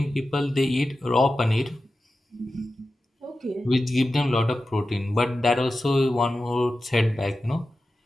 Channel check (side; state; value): both; normal; correlation 0.93